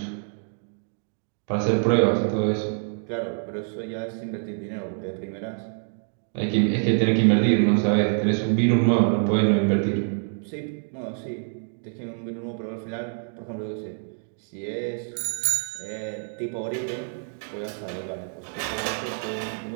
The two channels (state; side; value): silent; left; 60 dB below the other